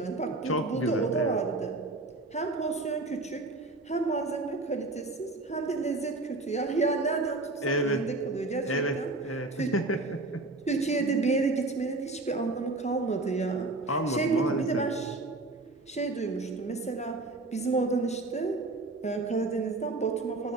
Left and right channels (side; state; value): left; quieter; 3.0 dB